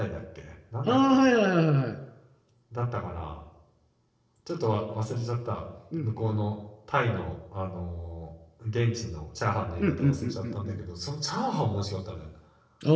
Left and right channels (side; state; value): both; identical; correlation 1.00